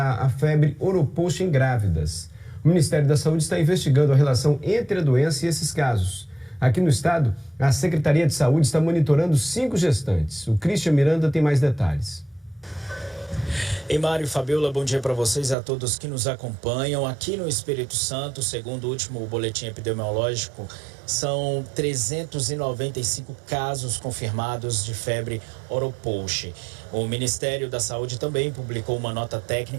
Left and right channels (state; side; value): drops out; left; at 15.6 s